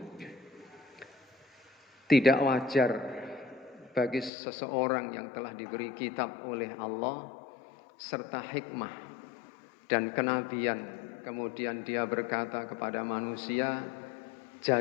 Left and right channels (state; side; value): drops out; right; at 4.3 s